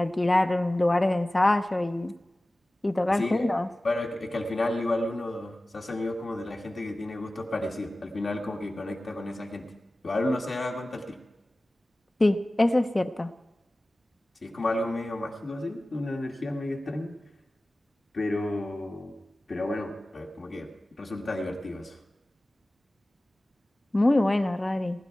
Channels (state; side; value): normal; both; correlation 0.97